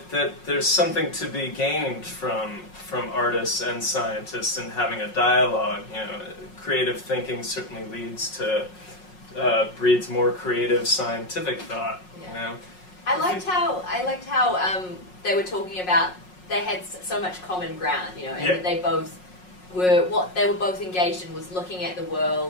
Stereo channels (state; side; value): late; right; 5.5 ms